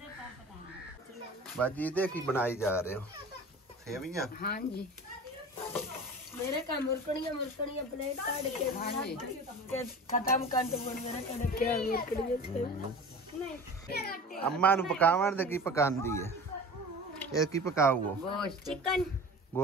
बाजी इहदे की बनाई जा रहे हो? सेवियां? हाँ जी। मेरे का मुरकड़ियां प्लेट काट के खत्म कर दो। मेरे का क्या मुरकड़ियां अम्मा नु पकावन दे की पकांदी है? ये की पकाओ? गोश्त चिकन।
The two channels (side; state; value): both; normal; correlation 0.37